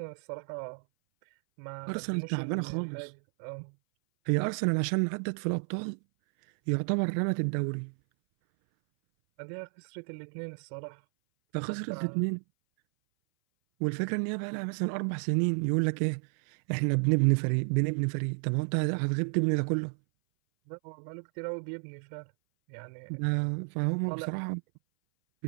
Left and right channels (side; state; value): left; silent; 57 dB below the other